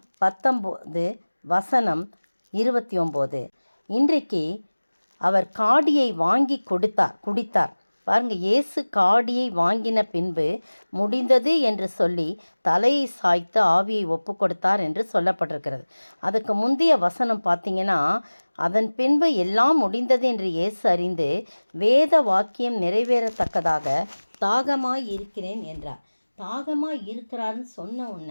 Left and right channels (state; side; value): inverted; both; correlation -1.00